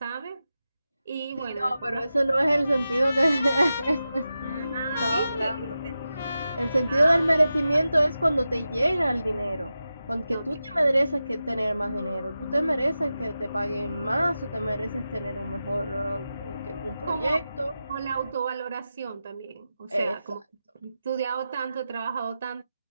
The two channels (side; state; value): both; inverted; correlation -0.92